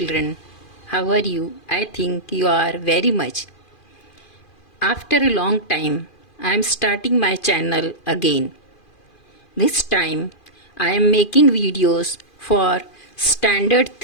how are you? I think you are very much. After a long time, I am starting my channel again. This time, I am making videos for Standard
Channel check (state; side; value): late; right; 2.4 ms